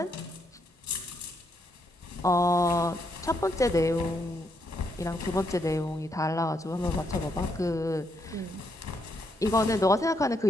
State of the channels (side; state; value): both; normal; correlation 0.77